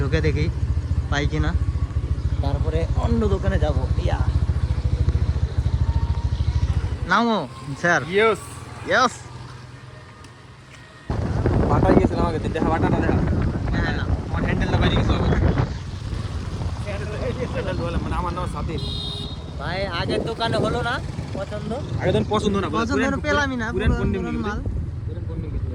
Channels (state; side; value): identical; both; correlation 1.00